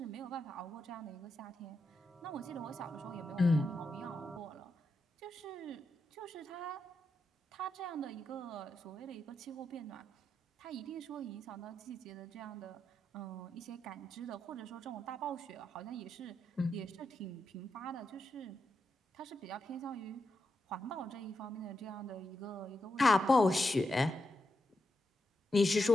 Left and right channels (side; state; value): both; normal; correlation 0.85